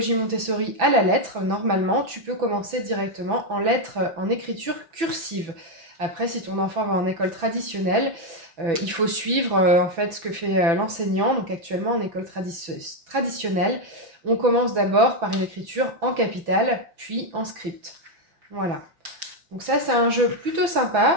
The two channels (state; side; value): late; left; 6.0 ms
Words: Montessori à la lettre, normalement tu peux commencer directement en lettres en écriture cursive. Après, si ton enfant va en école traditionnelle, il faut suivre en fait ce que fait l'enseignant. Donc actuellement en école traditionnelle, on commence d'abord par une écriture en capitale, puis en script. Voilà. Donc ça, c'est un jeu plutôt